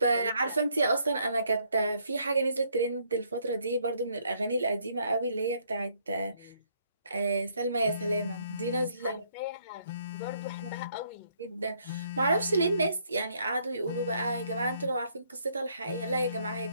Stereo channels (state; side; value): inverted; both; correlation -0.69